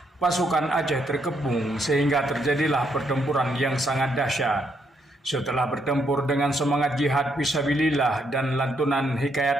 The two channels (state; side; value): normal; both; correlation 0.75